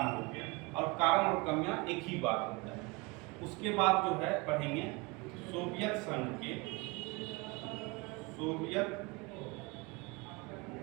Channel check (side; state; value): left; quieter; 26.6 dB